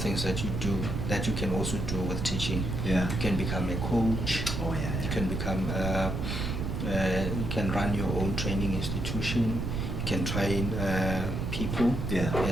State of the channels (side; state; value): right; noise; rumble, 2 dB below the sound